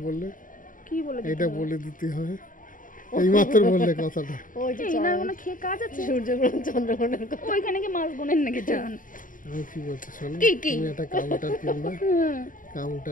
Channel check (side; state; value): right; late; 0.39 ms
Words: বললে? কি বলে দিতে এটা বলে দিতে হয় এইমাত্র বললে কথাটা। ওই যে না কোনো খেয়ে কাজ আছে? সূর্যগ্রহণ চন্দ্রগ্রহণের কথা ওইখানে কি মাছ গুনেন নাকি জান? আমি কি বলছি শোনো, কি তুমি একটা কাউন্টার কিনবা,